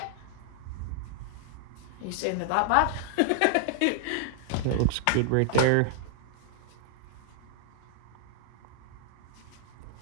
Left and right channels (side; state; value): both; different; correlation -0.01